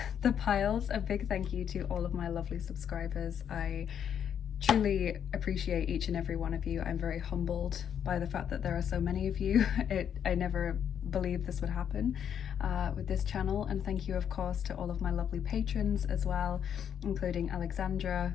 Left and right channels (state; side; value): quieter; right; 8.6 dB